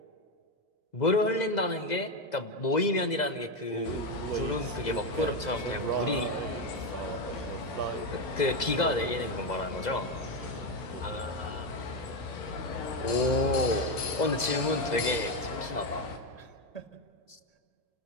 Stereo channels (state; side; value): late; right; 2.0 ms